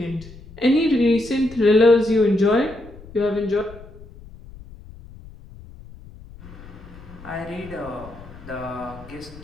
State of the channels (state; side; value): noise; left; rumble, 18 dB below the sound